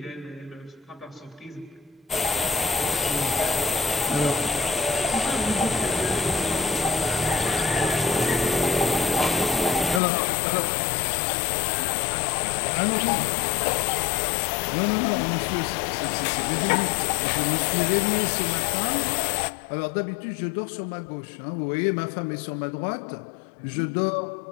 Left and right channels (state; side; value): drops out; right; at 10.0 s